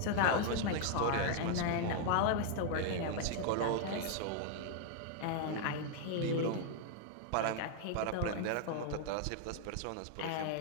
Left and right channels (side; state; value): both; different; correlation 0.00